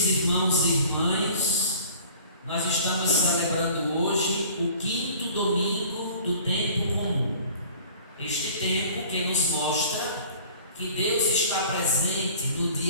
irmãos e irmãs, nós estamos celebrando hoje o 5º domingo do tempo comum. Este tempo que nos mostra que Deus está presente no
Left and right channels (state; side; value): inverted; both; correlation -0.47